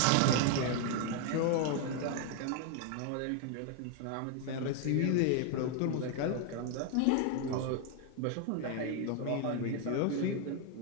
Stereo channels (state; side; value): different; both; correlation 0.00